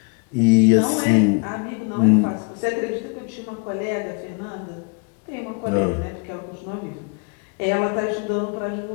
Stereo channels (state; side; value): quieter; right; 35.1 dB